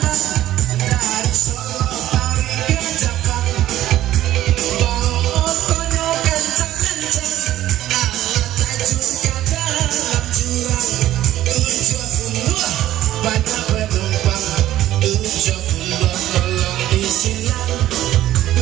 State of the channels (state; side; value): quieter; left; 13.7 dB